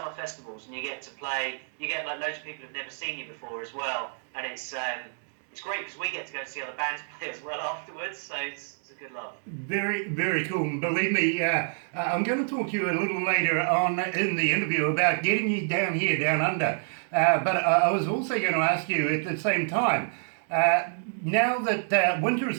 festivals and you get to play, you get like loads of people who've never seen you before as well, and it's great because we get to go and see other bands play as well afterwards. So it's a good laugh. Very, very cool. Believe me, I'm going to talk to you a little later on in the interview about getting you down here, down under. But I was also going to ask you at the same time, now that winter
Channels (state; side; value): silent; left; digital silence